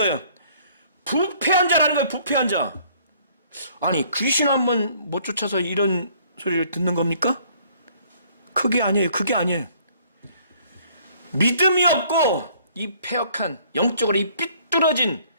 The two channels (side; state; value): both; inverted; correlation -0.60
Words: 부패한 자라는 거예요. 부패한 자. 아니 귀신 한번 못 쫓아서 이런 소리를 듣는 겁니까? 그게 아니에요. 믿음이 없고 이 패역한 영적으로 이 삐뚤어진